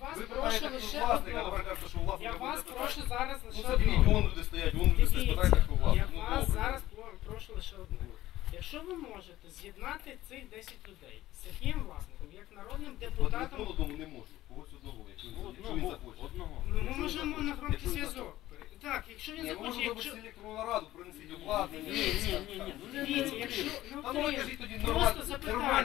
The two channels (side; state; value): right; quieter; 15.2 dB